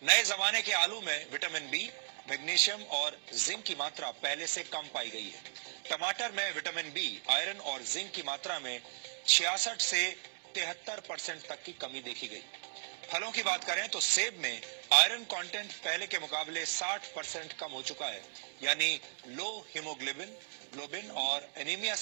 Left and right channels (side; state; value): left; silent; digital silence